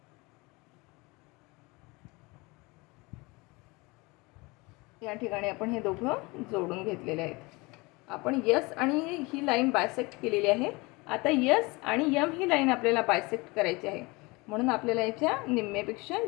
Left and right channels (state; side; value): quieter; right; 24.9 dB